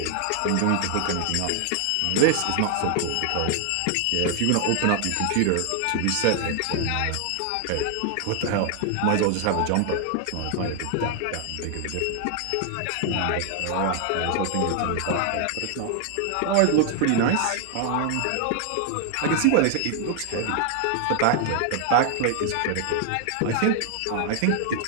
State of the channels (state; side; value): different; both; correlation 0.00